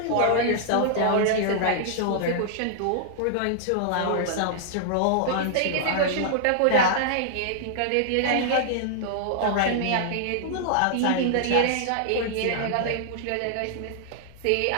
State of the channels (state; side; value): different; both; correlation -0.01